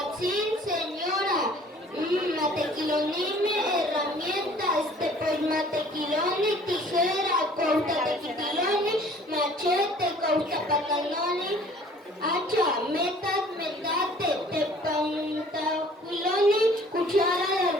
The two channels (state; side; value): normal; both; correlation 0.53